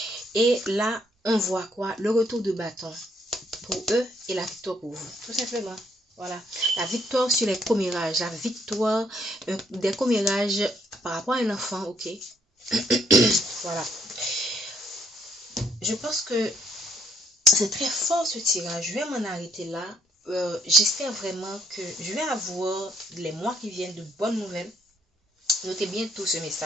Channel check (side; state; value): both; normal; correlation 0.69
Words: Et là, on voit quoi? Le retour de bâton pour eux et la victoire pour vous. Tout simplement. Voilà. La victoire sur les commérages. La victoire des commérages par rapport à un enfant. Ok? Voilà. Je pense que c'est très fort ce tirage. Je vais m'en arrêter là. J'espère vraiment que je vais avoir les mois qui viennent de bonnes nouvelles. Notez bien tout ce